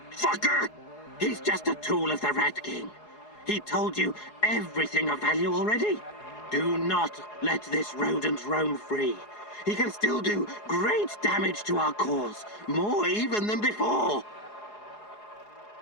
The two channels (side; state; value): right; late; 4.8 ms